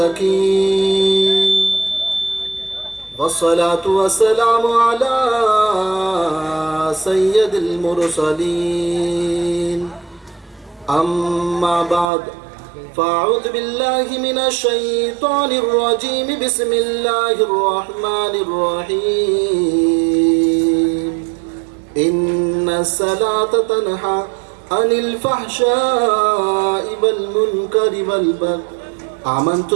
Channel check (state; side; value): drops out; left; at 12.1 s